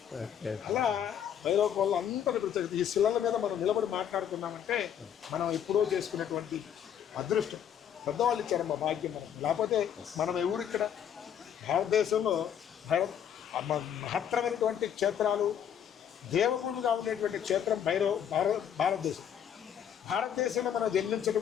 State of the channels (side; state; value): right; quieter; 9.1 dB